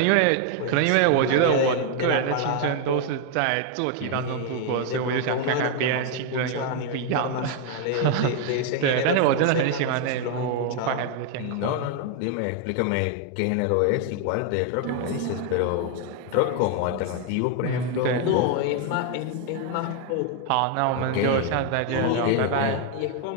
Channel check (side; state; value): both; different; correlation 0.00